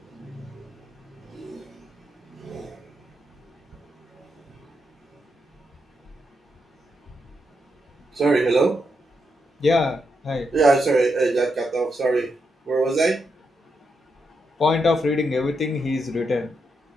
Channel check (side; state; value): both; normal; correlation 0.82